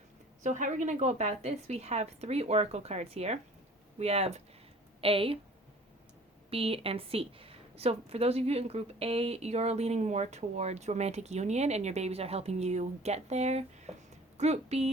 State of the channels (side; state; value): both; normal; correlation 0.48